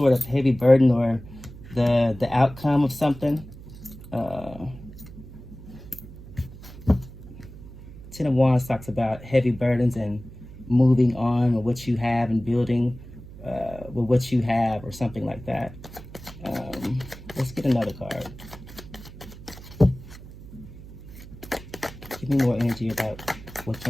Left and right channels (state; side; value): noise; right; hum, 16 dB below the sound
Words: of heavy burden or the outcome of something. Ten of Wands talks about heavy burdens and moving on with what you have and building with what you have or something like that. Let's get another card. Give me more energy about what